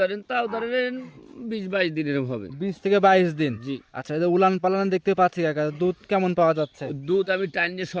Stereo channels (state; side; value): identical; both; correlation 1.00